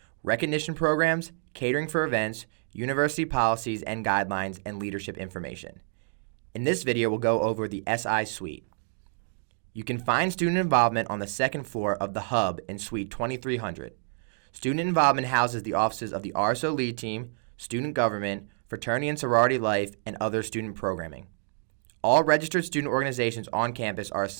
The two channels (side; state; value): left; silent; digital silence